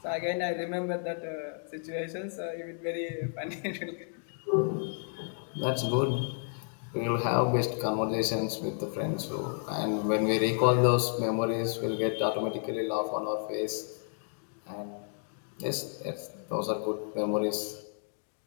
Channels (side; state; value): right; silent; 57 dB below the other